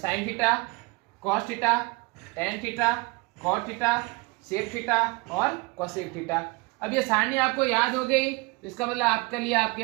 theta, cos theta, tan theta, cot theta, sec theta और कोसेक थीटा। अब ये सारणी आपको याद हो गई, तो इसका मतलब आपके लिए आपकी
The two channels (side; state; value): left; quieter; 26.5 dB